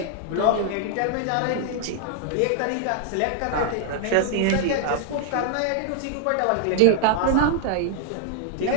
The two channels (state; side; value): different; both; correlation 0.00